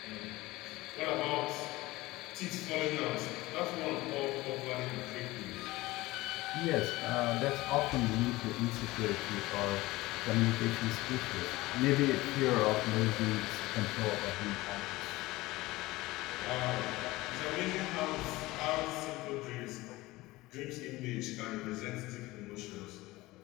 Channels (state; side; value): quieter; right; 19.4 dB